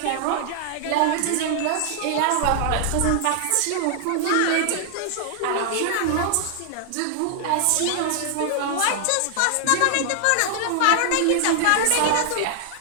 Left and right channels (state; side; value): different; both; correlation 0.00